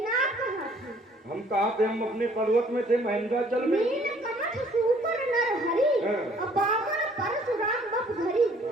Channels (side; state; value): both; normal; correlation 0.59